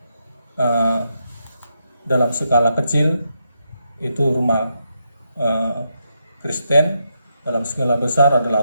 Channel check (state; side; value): inverted; both; correlation -0.81